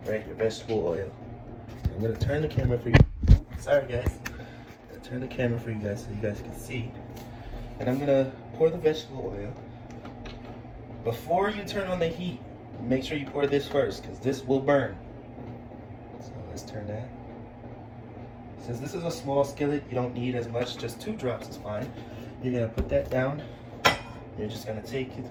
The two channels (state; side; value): identical; both; correlation 1.00